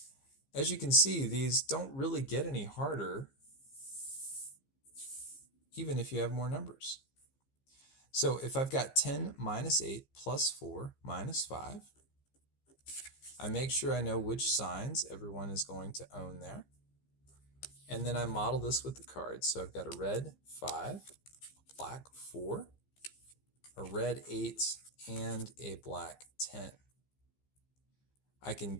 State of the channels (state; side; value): late; right; 15 ms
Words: As you can see, these don't really get any harder even if you have more numbers. So if I've got 10 minus 8 plus 4 minus 5, I make sure I know which signs everyone is going to own there. And then I model this with the cards. So I've got a red 5, a black 4, a red 8, and a black 10. I can